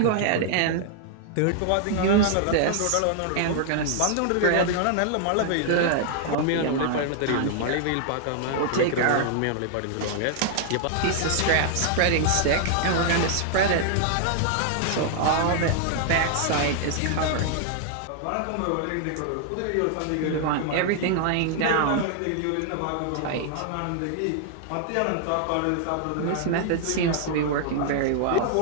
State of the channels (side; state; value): both; different; correlation 0.00